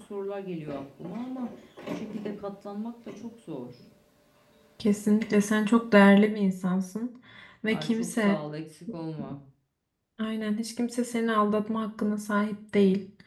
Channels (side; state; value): both; identical; correlation 1.00